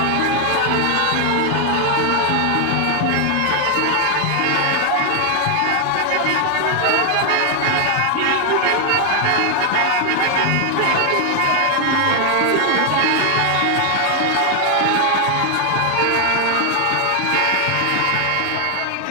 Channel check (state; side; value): different; both; correlation 0.00